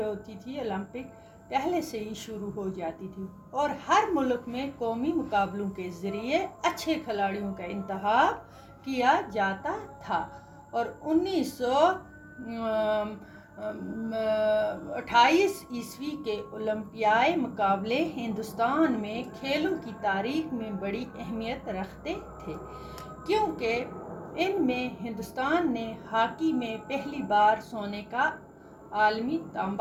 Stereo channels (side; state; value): both; identical; correlation 1.00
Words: होती थी ओलंपिक पहले से ही शुरू हो जाती थी और हर मुल्क में कौमी मुकाबलों के ज़रिए अच्छे खिलाड़ियों का इंतखाब किया जाता था। और 1928 ईस्वी के ओलंपियाई मुकाबले हिंदुस्तान में खेलों की तारीख में बड़ी अहमियत रखते थे, क्योंकि इनमें हिंदुस्तान ने हॉकी में पहली बार सोने का आलमी